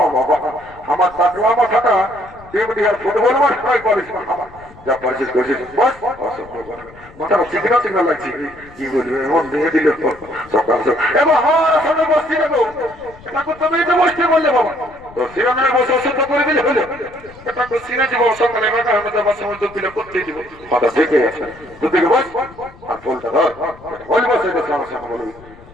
বাবা, আমার টাকলা মাথাটা ডিমডিহার ফুটবল মাঠ নয় করিস না। আমার যা পারছিস করছিস বস, মাথাটা চিকনা চিকনা লাগছে। কি বলবি এমন দিয়ে দিল সকাল এবং আমার সামনে বসছি না গো। এটা তুমি তো বসতে বললে বাবা, তো সিনেমায় বসে অসুস্থ করে দিলে হলো। এটা তো সিনে দিব সকালে বাঁকা হবে, তো বাসা মধ্যে পিলে করতে দিব। মাথা থেকে আছে দুদিকে বস আর ফুলটা ধর বল, বসে সমস্যা বলবি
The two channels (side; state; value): left; noise; rumble, 22 dB below the sound